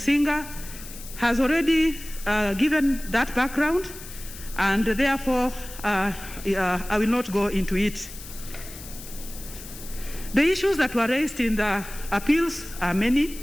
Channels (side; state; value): left; noise; hiss, 14 dB below the sound